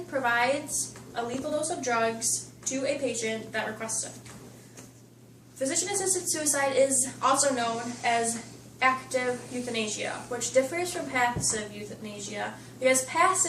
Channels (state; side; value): identical; both; correlation 1.00